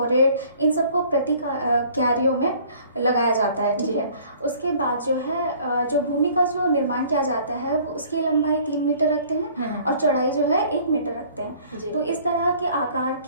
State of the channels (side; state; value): both; inverted; correlation -0.54